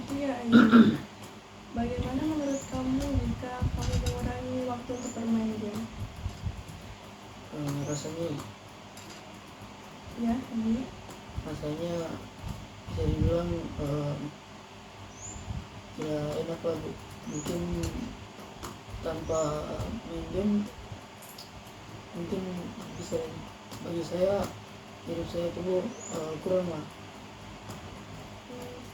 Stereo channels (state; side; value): identical; both; correlation 1.00